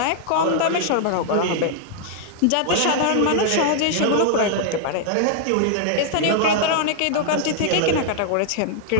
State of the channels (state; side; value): different; both; correlation -0.01